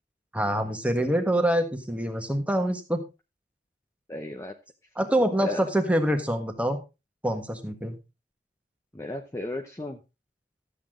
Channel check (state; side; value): normal; both; correlation 0.82